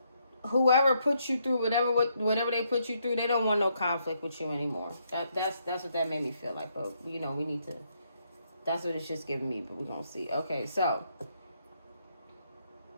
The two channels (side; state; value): both; inverted; correlation -0.75